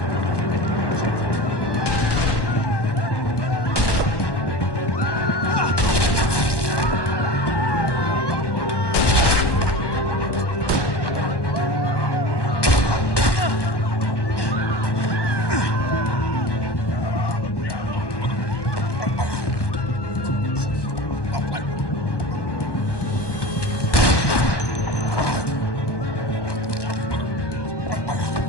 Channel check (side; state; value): right; late; 1.1 ms